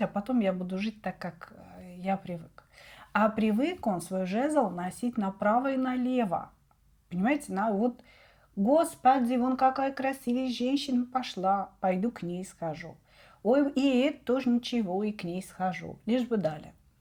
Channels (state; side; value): identical; both; correlation 1.00